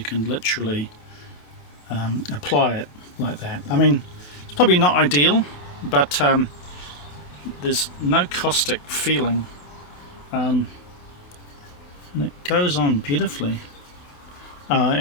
can literally apply it like that. I mean, it's probably not ideal, but there's no caustic feeling, and it goes on beautifully,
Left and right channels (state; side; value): late; right; 28 ms